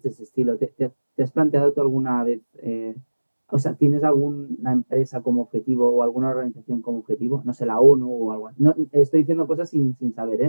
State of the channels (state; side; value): inverted; both; correlation -1.00